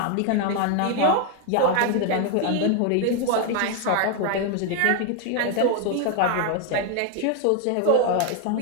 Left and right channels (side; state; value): both; different; correlation 0.01